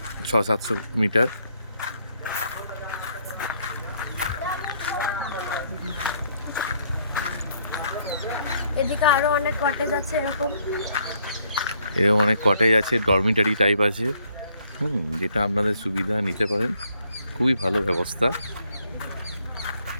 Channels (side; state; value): both; inverted; correlation -0.68